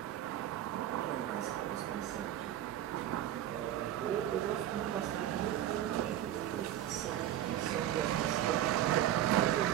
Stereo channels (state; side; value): quieter; left; 12.0 dB